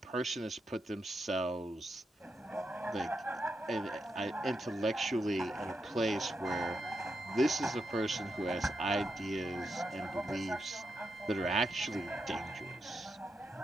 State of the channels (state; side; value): normal; both; correlation 0.85